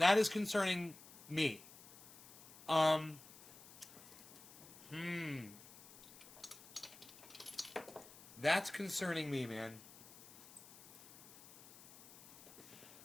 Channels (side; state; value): left; noise; hiss, 19 dB below the sound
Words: is concerning me. That's concerning me, man.